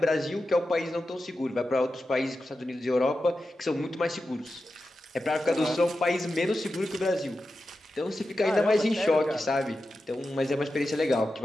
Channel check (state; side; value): normal; both; correlation 0.91